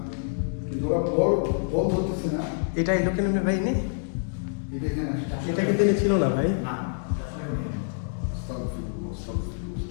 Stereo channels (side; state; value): right; silent; 60 dB below the other